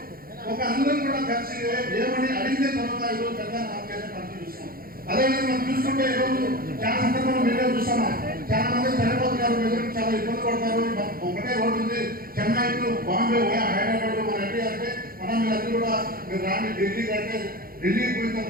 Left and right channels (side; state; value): left; late; 0.43 ms